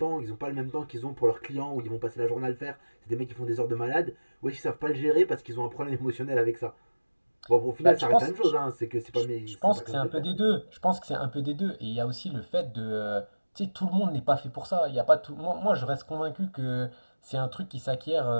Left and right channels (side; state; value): both; inverted; correlation -1.00